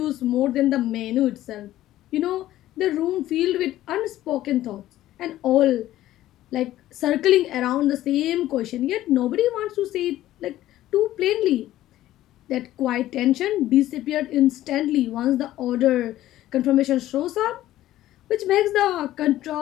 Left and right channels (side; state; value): right; quieter; 14.3 dB